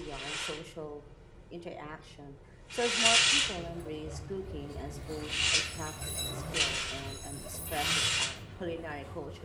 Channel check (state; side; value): identical; both; correlation 1.00